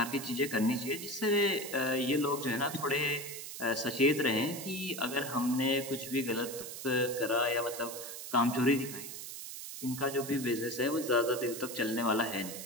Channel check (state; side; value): noise; right; hiss, 9 dB below the sound